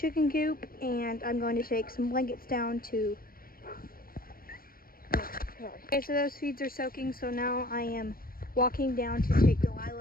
coop, and I'm going to take some blankets down to okay, so those feeds are soaking, so now I am walking down to take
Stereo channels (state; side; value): late; right; 0.42 ms